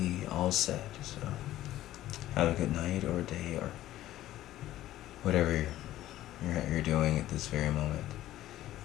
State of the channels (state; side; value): quieter; right; 14.2 dB